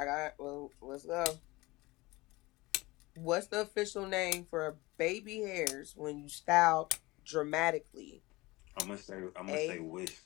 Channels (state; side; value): quieter; right; 21.5 dB